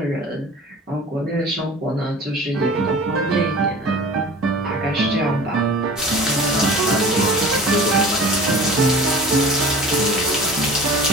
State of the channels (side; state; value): both; normal; correlation 0.41